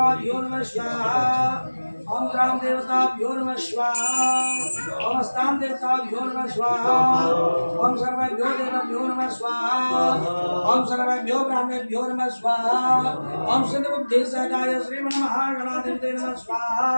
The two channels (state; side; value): inverted; both; correlation -1.00